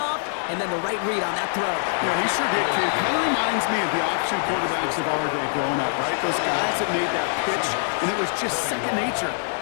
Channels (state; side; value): silent; right; digital silence